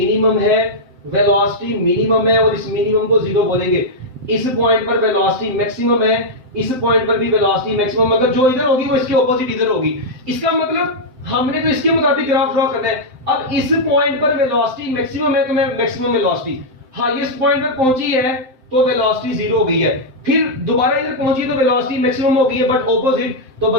है, वेलोसिटी मिनिमम है, और इस मिनिमम को जीरो बोलेंगे। इस पॉइंट पर वेलोसिटी मैक्सिमम है, इस पॉइंट पर भी वेलोसिटी मैक्सिमम, मगर जो इधर होगी वो इसके ऑपोजिट इधर होगी। इसका मतलब हमने तो इसके मुताबिक ग्राफ ड्रॉ करना है। अब इस पॉइंट पर वेलोसिटी मैक्सिमम है तो मैं मैक्सिमम वेलोसिटी, हाईएस्ट पॉइंट पर पहुंची है तो वेलोसिटी जीरो हो गई है, फिर दोबारा इधर पहुंची तो वेलोसिटी मैक्सिमम हो गई है बट ऑपोजिट, तो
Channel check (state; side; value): late; left; 7.7 ms